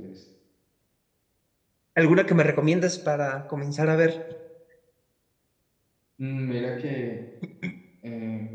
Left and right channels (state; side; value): identical; both; correlation 1.00